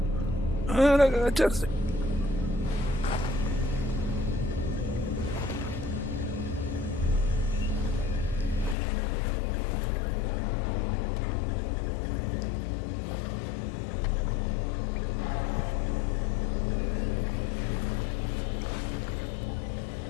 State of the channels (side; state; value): right; drops out; at 8.8 s